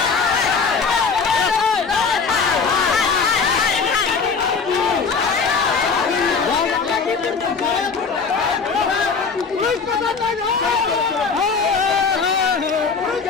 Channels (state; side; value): quieter; right; 5.2 dB